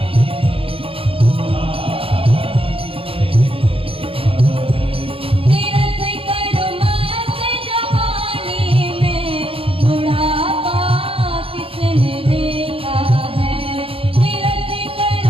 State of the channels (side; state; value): left; late; 0.27 ms